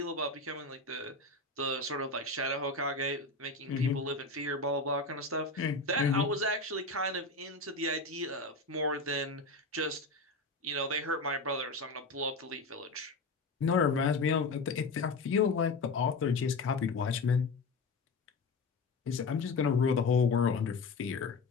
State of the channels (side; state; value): right; quieter; 3.5 dB